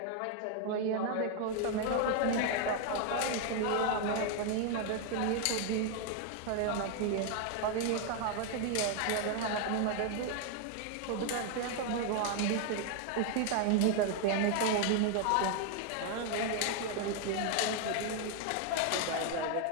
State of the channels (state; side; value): different; both; correlation 0.00